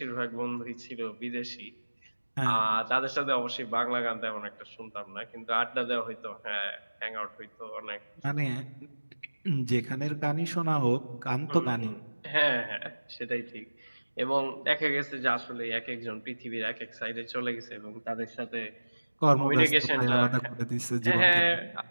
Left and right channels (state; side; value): inverted; both; correlation -1.00